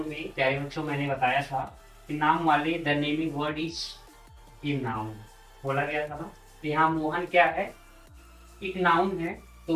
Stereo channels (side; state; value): both; identical; correlation 1.00